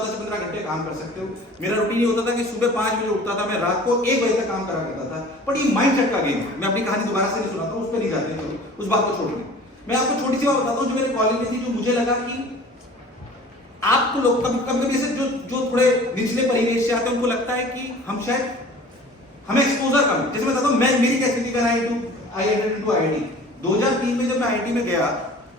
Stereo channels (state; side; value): normal; both; correlation 0.45